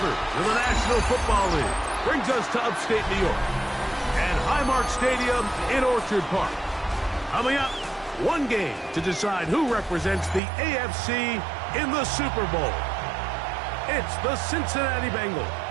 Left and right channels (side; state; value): left; drops out; at 10.4 s